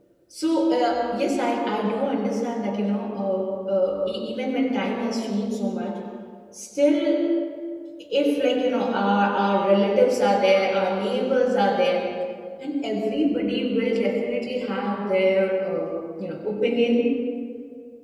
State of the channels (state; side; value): identical; both; correlation 1.00